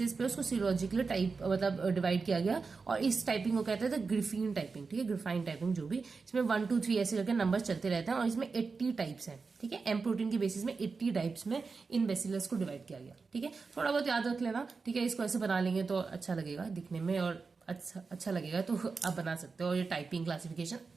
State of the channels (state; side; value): quieter; left; 4.6 dB